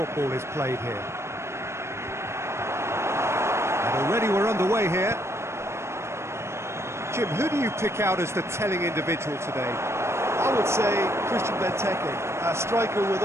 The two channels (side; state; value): left; late; 0.13 ms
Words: is played here. And already we're underway here. Jim, who do you pick out as the telling individual today? I would say Christian Benteke, a striker with